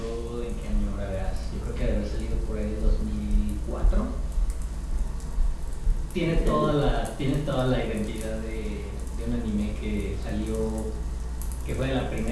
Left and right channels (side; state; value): both; identical; correlation 1.00